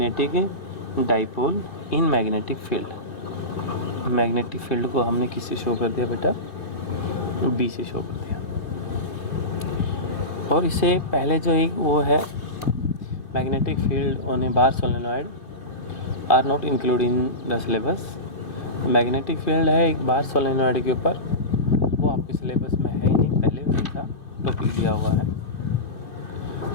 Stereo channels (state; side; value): late; right; 2.6 ms